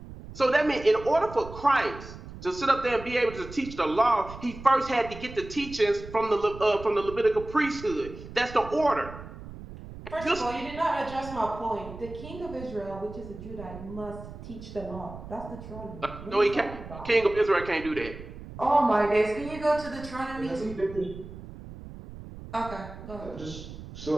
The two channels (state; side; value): noise; right; rumble, 13 dB below the sound